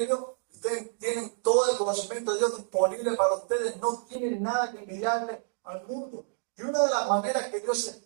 ustedes tienen todo el conocimiento de Dios disponible para ustedes, no tienen nada que envidiarle al mundo. Y una de las maneras que Dios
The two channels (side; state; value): left; silent; digital silence